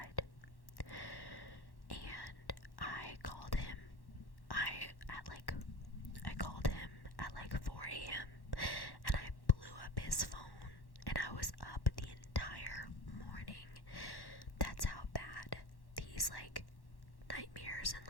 And I called him at like 4 a.m. and I blew up his phone, and I was up the entire morning. That's how bad these like nightmares and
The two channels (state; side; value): late; right; 1.1 ms